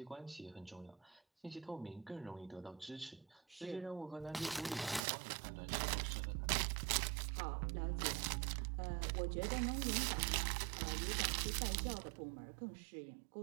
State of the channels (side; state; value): left; drops out; at 5.0 s